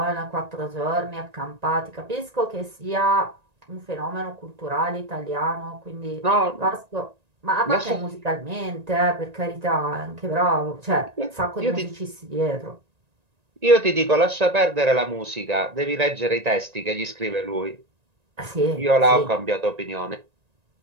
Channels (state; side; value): late; left; 1.9 ms